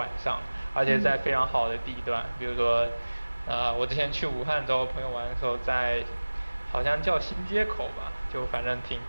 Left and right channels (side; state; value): both; inverted; correlation -1.00